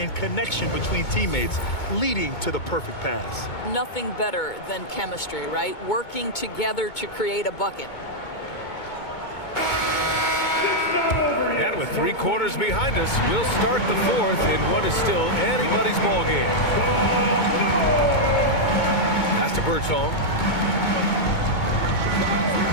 connection between teammates leading to the perfect pass. Nothing better than chemistry, right? Working together to create a bucket. And with 3 quarters behind us, we'll start the 4th in what is still anybody's ball game. Pass to Birdsong.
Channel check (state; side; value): late; right; 2.2 ms